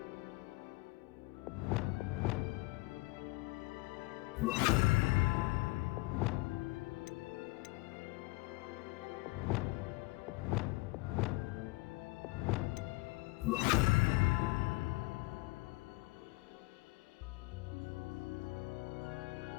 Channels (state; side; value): quieter; right; 22.7 dB